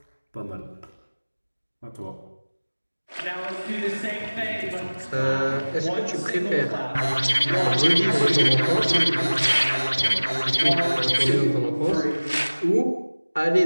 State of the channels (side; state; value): both; inverted; correlation -1.00